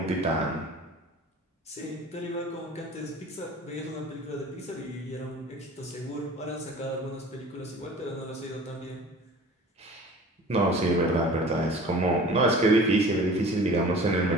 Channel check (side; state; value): both; normal; correlation 0.43